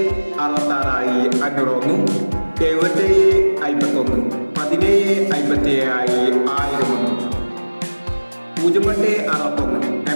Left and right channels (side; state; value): both; inverted; correlation -1.00